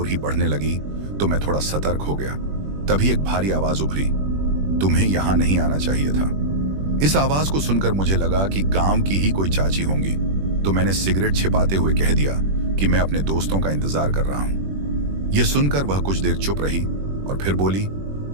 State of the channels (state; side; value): late; left; 21 ms